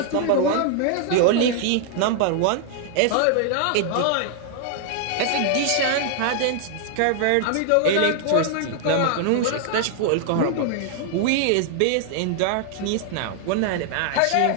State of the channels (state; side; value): different; both; correlation 0.00